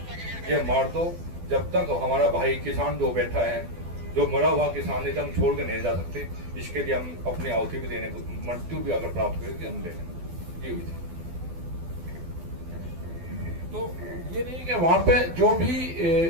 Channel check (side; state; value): left; late; 12 ms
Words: ये मार दो, जब तक हमारा भाई किसान जो बैठा है, जो मरा हुआ किसान है, हम छोड़ के नहीं जा सकते। इसके लिए हम अपनी आहुति भी देने को, मृत्यु भी अगर प्राप्त करेगी हम ले लेंगे। ये हुई थी। तो ये नहीं कि वहां पे जो भी